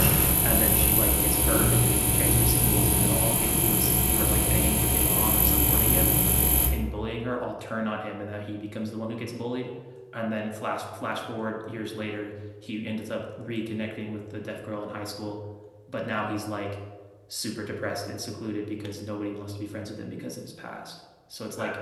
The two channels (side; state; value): both; identical; correlation 1.00